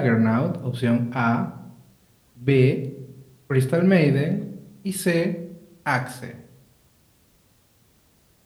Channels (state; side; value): identical; both; correlation 1.00